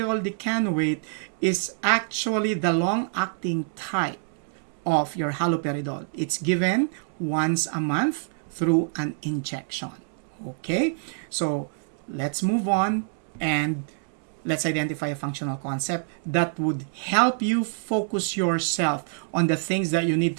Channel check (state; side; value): silent; left; digital silence